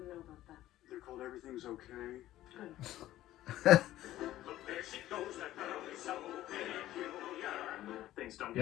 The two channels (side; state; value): right; quieter; 14.3 dB